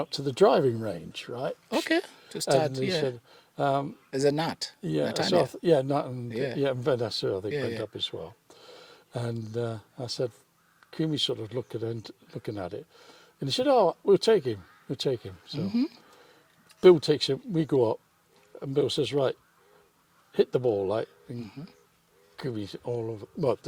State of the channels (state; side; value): identical; both; correlation 1.00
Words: up to the driving range, right? Okay. To start, And he said, There's a nut. yeah, Nut so idea. Nut and and Vanessa, I think, went yeah. up as well. And I said, Kumi sort of looking at it, and he said, "Oh, we'll take him. So Bill takes him. We go up, and Bill says, "Right, hit the ball, like." And Kumi's all over. Well,